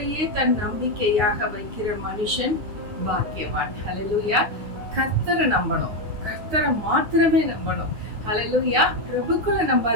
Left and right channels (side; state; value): left; late; 9.6 ms